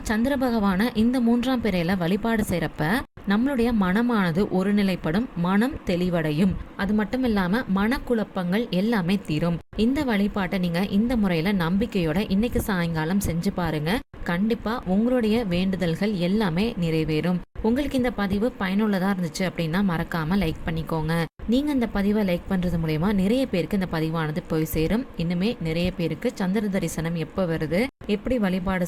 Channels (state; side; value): identical; both; correlation 1.00